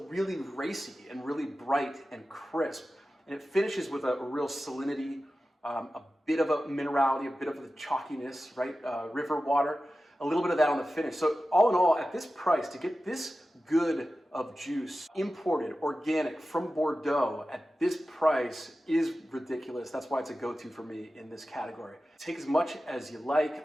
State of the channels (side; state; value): both; normal; correlation 0.94